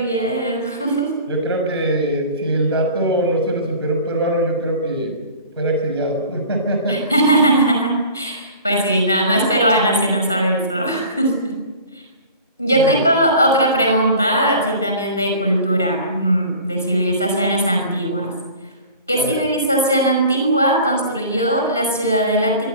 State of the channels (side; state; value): both; inverted; correlation -0.43